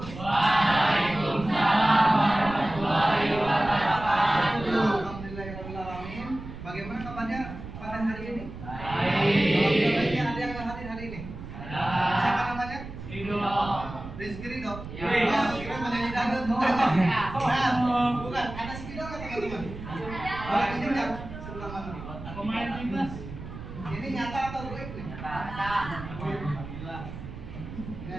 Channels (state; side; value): noise; right; rumble, 11 dB below the sound